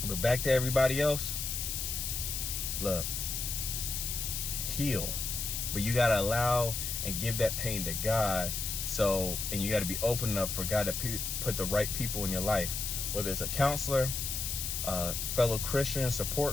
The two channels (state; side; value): noise; left; hiss, 3 dB below the sound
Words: But back to everybody else, look, heal. But you gotta allow and give that pain to God. And you got to be open enough for God to put the right people in your life, whether it's a counselor, a fellow Christian